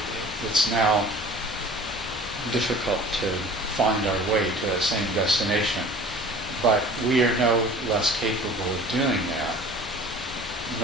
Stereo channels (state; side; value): normal; both; correlation 0.45